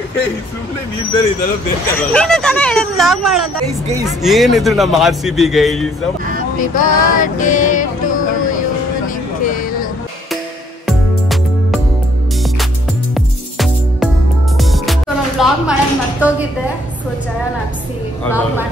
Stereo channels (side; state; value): both; normal; correlation 0.65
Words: ಸುಮ್ಮನೆ ನೀನ್ ಬೇರೆ ಇದೆಲ್ಲ ಬೇಕಾಗಲ್ಲ. ಏನಿದ್ರು ನಮ್ಮ RCB guys. Happy birthday to you Nikhil. ನಾನು ವ್ಲಾಗ್ ಮಾಡೋದು ಮರ್ತೋಗಿದ್ದೆ. ಸೊ ಜಯ ನಾಪ್ಸಿ ವ್ಲಾಗ್